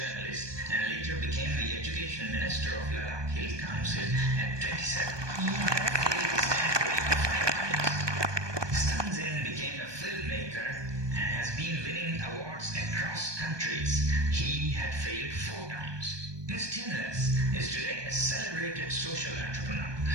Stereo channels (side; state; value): left; late; 1.2 ms